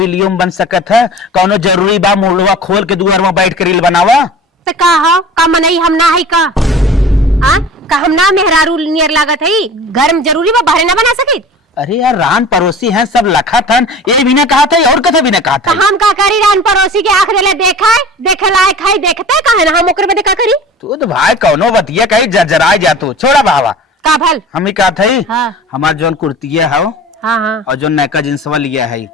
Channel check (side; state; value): both; normal; correlation 0.39